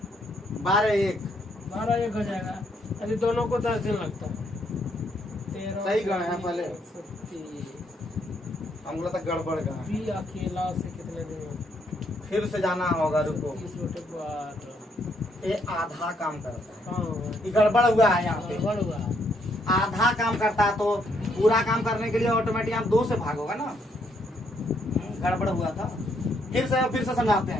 12 1 हो जाएगा। अभी दोनों को 10 दिन लगता है। 13 सही गए हैं पहले। 30 हम तक गड़बड़ गए। बी अकेला से कितने दिन में? फिर से जाना होगा, रुको। 30/12 ये आधा काम करता है। हाँ ये गड़बड़ हुआ है यहाँ पे। गड़बड़ हुआ। आधा काम करता है तो पूरा काम करने के लिए ऑटोमेटिक आप 2 से भागोगा ना। गड़बड़ हुआ था। फिर से समझाते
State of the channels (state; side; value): normal; both; correlation 0.73